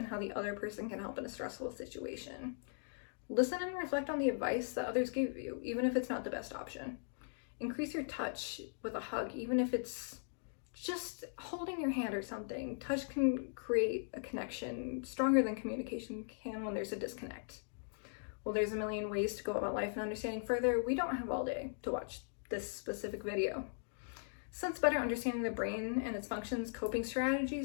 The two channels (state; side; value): silent; right; digital silence